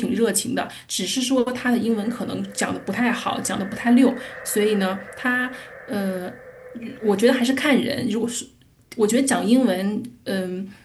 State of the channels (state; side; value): identical; both; correlation 1.00